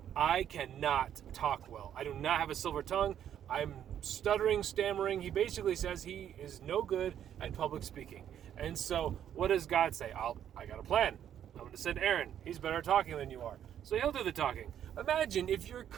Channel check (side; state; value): left; quieter; 9.9 dB